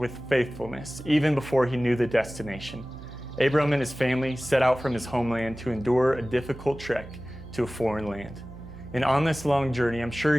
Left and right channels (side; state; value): right; noise; hum, 15 dB below the sound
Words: faithfulness, even before he knew the destination. Abram and his family set out from his homeland to endure a difficult trek to a foreign land. And on this long journey, I'm sure